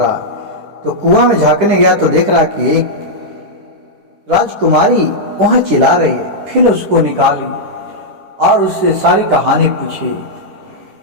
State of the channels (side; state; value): left; late; 10 ms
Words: तो कुआं में झांकने गया तो देख रहा कि एक राजकुमारी वहां चिल्ला रही है। फिर उसको निकाली और उससे सारी कहानी पूछी।